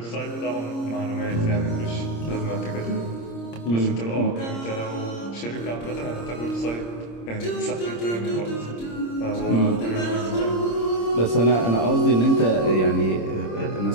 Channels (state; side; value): late; right; 26 ms